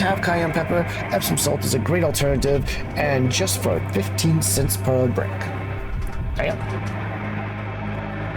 cayenne pepper, Epsom salt is a great alternative, and just for 15 cents per brick. Bam.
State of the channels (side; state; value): both; identical; correlation 1.00